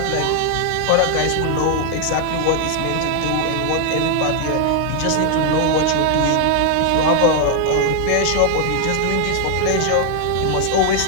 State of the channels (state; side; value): different; both; correlation 0.00